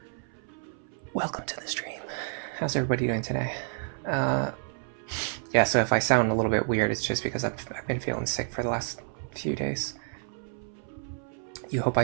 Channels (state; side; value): silent; left; 58 dB below the other